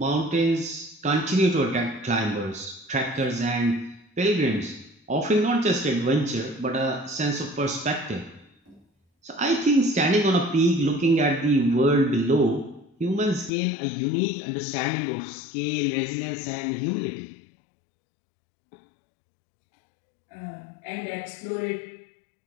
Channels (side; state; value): right; drops out; at 13.5 s